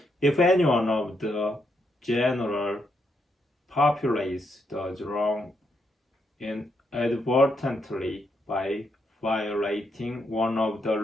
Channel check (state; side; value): normal; both; correlation 0.78